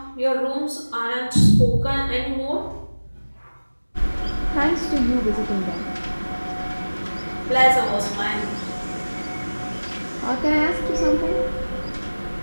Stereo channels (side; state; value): both; inverted; correlation -1.00